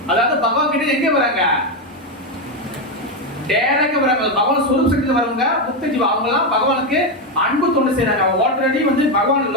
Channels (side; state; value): both; normal; correlation 0.08